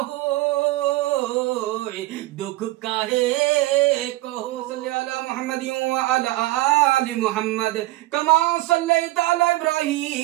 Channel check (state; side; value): quieter; left; 18.3 dB